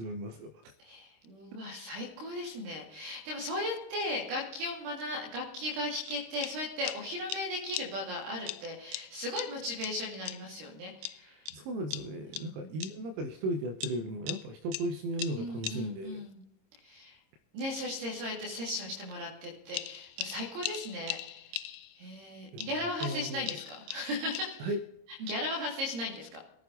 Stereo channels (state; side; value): late; left; 26 ms